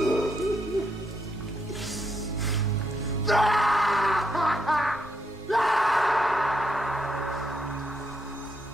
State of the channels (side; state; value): left; noise; rumble, 26 dB below the sound